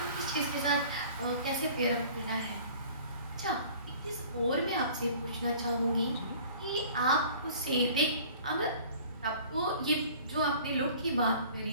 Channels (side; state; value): both; inverted; correlation -0.48